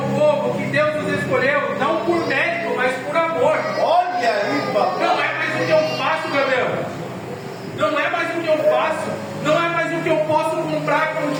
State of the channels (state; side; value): identical; both; correlation 1.00